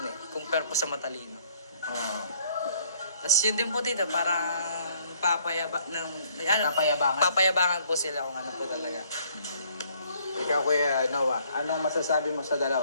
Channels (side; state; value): both; inverted; correlation -0.63